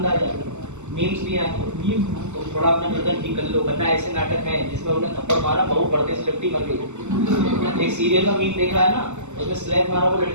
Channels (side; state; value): left; late; 0.83 ms